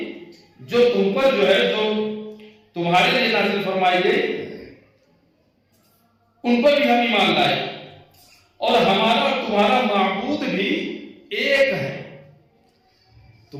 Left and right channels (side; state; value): both; identical; correlation 1.00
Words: جو تم پر جو ہے، جو تمہارے لیے نازل فرمائی گئی، ان پر بھی ہم ایمان لائے. اور ہمارا اور تمہارا معبود بھی ایک ہے.